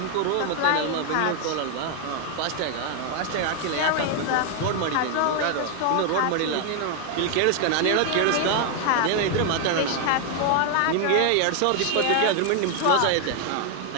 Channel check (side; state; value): both; different; correlation 0.00